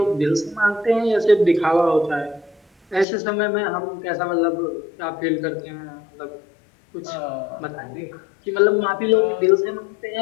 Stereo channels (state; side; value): drops out; right; at 3.1 s